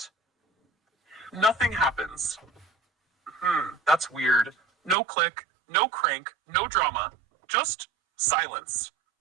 Nothing happens. That's weird. No click, no crank, no drama, just silence.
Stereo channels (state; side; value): drops out; left; at 5.0 s